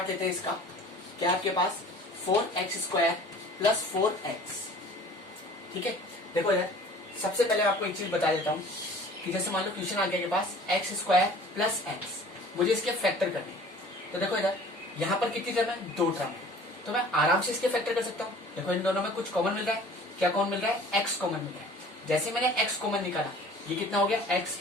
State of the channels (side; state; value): both; normal; correlation 0.47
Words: लेते हैं इसका। क्या आपके पास 4x² प्लस 4x, ठीक है। देखो यार, सबसे पहले आपको एक चीज बता देता हूं कि जैसे मान लो क्वेश्चन आ गया के पास x² प्लस x, मुझे इसके फैक्टर करने हैं। तो देखो इधर, यहाँ पर कितनी टर्म है, 2 टर्म है, तो मैं आराम से इसके फैक्टर कर सकता हूँ। देखो इन दोनों में कुछ कॉमन मिल रहा है। क्या कॉमन मिल रहा है, x कॉमन मिल रहा है। जैसे मैंने x कॉमन निकाला, ये कितना हो गया, x